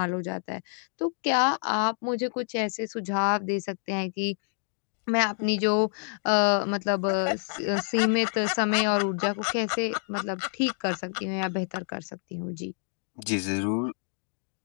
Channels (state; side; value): silent; right; 59 dB below the other